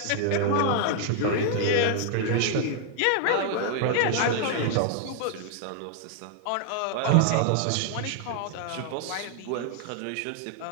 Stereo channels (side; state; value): both; different; correlation 0.00